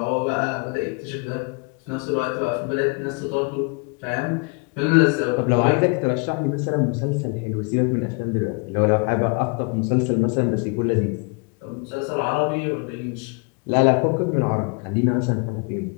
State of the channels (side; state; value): right; quieter; 33.1 dB